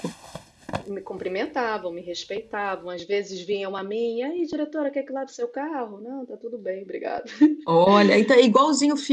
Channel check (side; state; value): both; identical; correlation 1.00